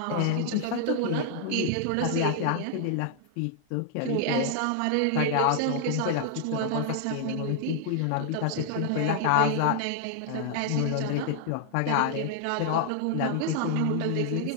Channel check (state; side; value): different; both; correlation 0.00